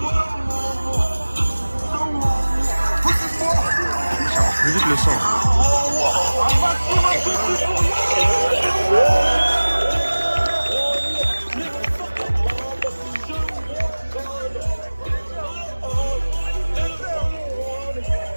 Ça marche plus vite le sang.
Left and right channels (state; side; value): inverted; both; correlation -1.00